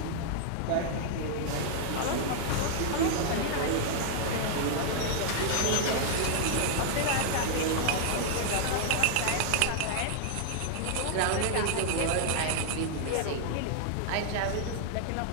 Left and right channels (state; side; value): different; both; correlation -0.01